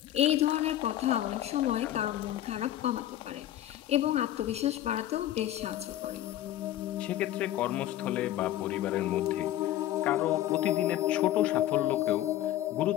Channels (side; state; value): right; quieter; 13.0 dB